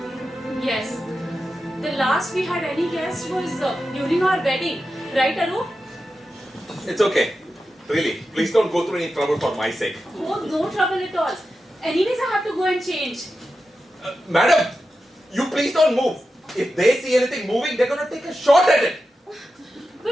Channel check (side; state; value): both; normal; correlation 0.91